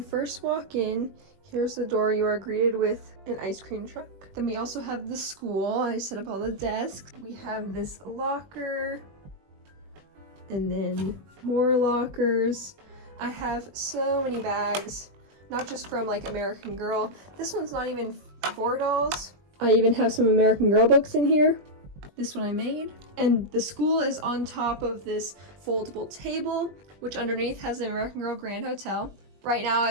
walk in, here's the door. You are greeted with an ice cream truck. Then we also have the school. I set up all the desks. We have this locker and then more lockers. I have so many bags, not just from like American Girl. This one's not even for dolls. I even have some American Girl books in here. This one I made. And the school is on top of this foldable table, which underneath has the American Girl Grand Hotel. Right now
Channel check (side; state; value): left; late; 20 ms